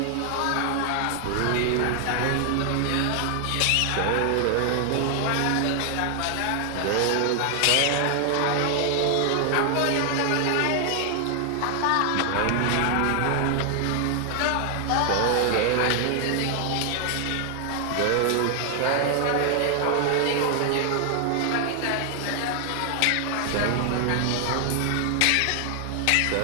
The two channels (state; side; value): different; both; correlation 0.00